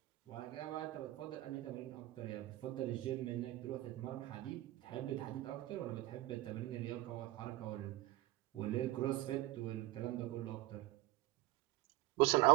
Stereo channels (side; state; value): left; quieter; 16.8 dB